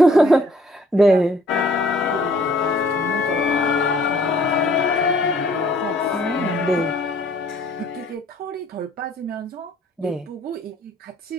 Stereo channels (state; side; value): normal; both; correlation 0.59